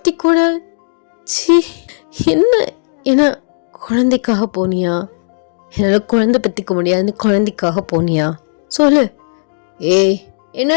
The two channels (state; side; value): silent; right; digital silence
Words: கூட என்ன குழந்தைக்காக போனியா? என்னால் குழந்தை பற்றிக்க முடியாதுன்னு குழந்தைக்காக போனியா? சொல்லு. ஏய்